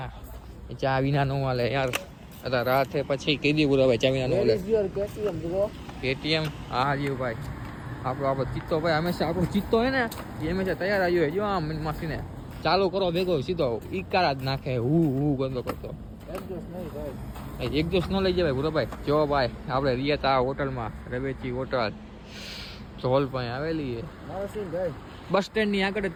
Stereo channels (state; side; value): identical; both; correlation 1.00